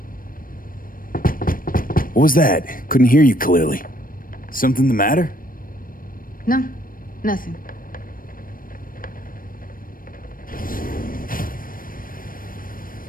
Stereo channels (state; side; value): late; right; 0.41 ms